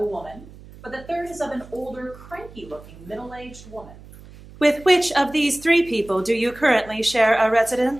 woman, but the third is of an older, cranky-looking, middle-aged woman. With which of these 3 people do you currently share a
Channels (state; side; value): noise; right; hum, 19 dB below the sound